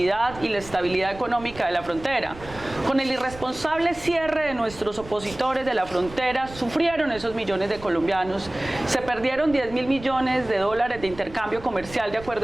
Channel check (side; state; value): right; noise; rumble, 17 dB below the sound